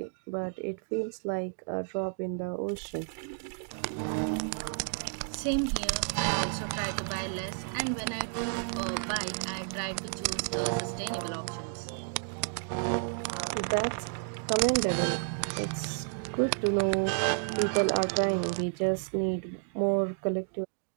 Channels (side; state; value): left; silent; 57 dB below the other